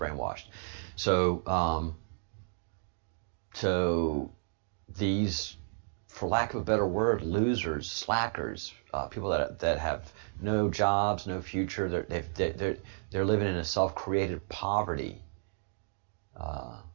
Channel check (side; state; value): left; silent; digital silence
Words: So these, for lack of a better word, losers, slackers, people that have no jobs, no future, they're living in a self-created poverty.